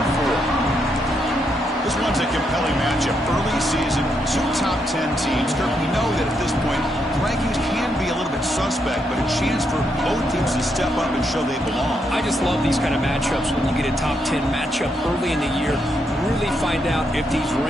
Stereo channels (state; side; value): normal; both; correlation 0.79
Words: 4. This one's a compelling matchup. Early season, 2 top 10 teams. Kirk, we know that at this point, rankings can be a little bit suspect, but a chance for both teams to step up and show they belong. I just love these kind of matchups when you get a top 10 matchup early in the year. Really find out if these